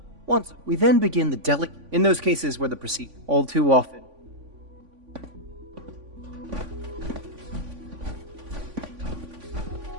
Once we then begin the delicate... In those cases where the procedure... All too often...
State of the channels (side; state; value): left; late; 3.5 ms